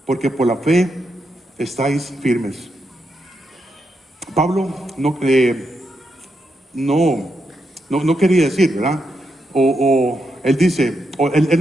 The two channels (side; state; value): both; normal; correlation 0.83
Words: porque por la fe estáis firmes. Pablo no quería decir, ¿verdad? Él